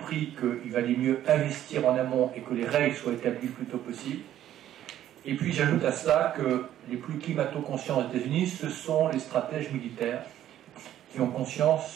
qu'il valait mieux investir en amont et que les règles soient établies le plus tôt possible. Et puis j'ajoute à cela que les plus climato-conscients des États-Unis, ce sont les stratèges militaires qui ont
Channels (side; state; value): left; quieter; 11.9 dB